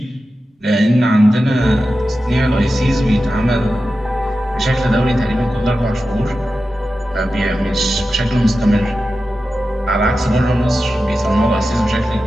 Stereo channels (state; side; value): normal; both; correlation 0.92